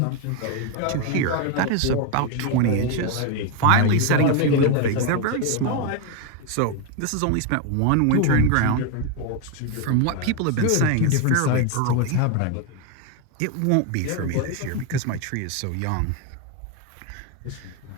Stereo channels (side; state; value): both; different; correlation 0.02